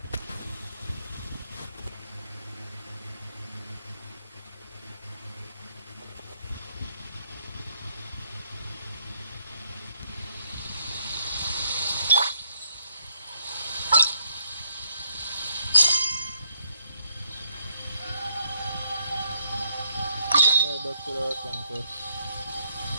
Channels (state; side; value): inverted; both; correlation -0.74